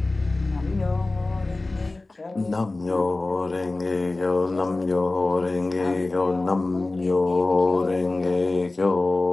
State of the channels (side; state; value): right; quieter; 3.1 dB